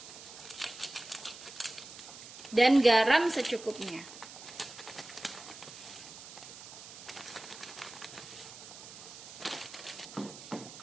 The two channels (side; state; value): right; noise; hiss, 14 dB below the sound